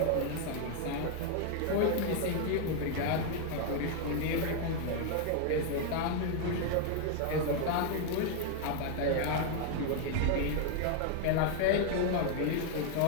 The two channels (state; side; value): different; both; correlation 0.00